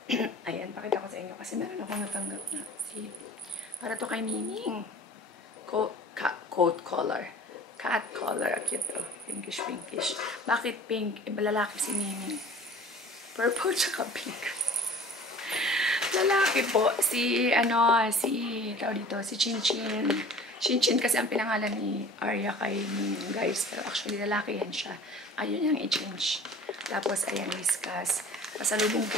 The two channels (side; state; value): both; normal; correlation 0.45